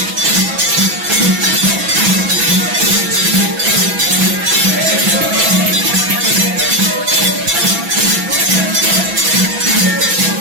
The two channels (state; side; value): late; left; 6.0 ms